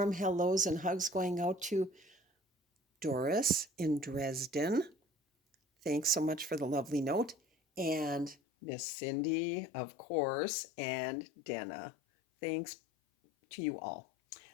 hellos and hugs going out to Doris in Dresden. Thanks so much for the lovely note. And Miss Cindy, of course, and Dana. Thanks to you all.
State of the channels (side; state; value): right; drops out; at 8.3 s